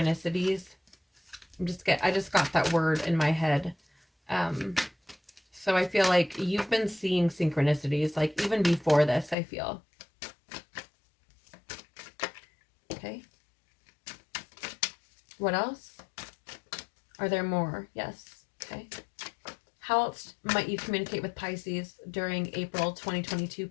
I just got that word in my head. So I feel like you've been seeing synchronicities, like even before this, I feel. Okay. What else? Are there more? Yes. Okay. How else might you communicate with Pisces during April 2022,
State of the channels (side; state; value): right; drops out; at 9.3 s